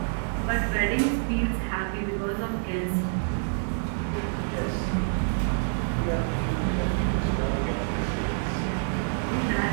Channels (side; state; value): left; silent; digital silence